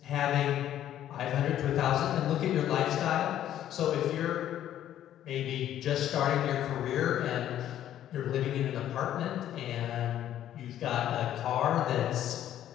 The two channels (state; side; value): quieter; right; 11.6 dB